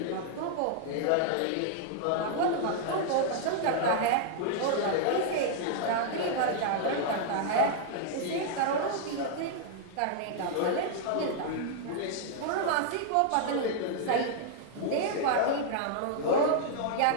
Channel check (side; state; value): both; different; correlation -0.01